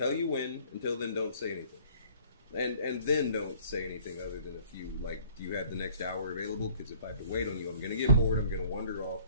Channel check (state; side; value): inverted; both; correlation -0.55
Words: you when. Until then, don't say anything. And then don't say anything other than a few, like, do you have the next hour available? Because if I have to wait on you, I'm going to get bored, I'm going to wander off,